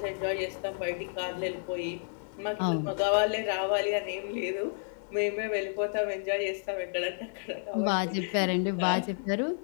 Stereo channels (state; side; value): silent; right; digital silence